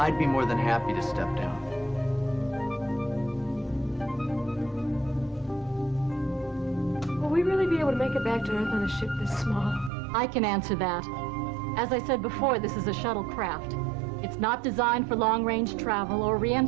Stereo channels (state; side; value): drops out; left; at 9.9 s